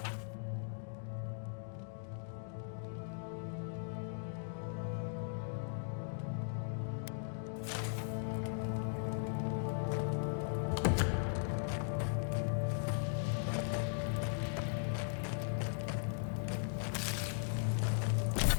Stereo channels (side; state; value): right; silent; digital silence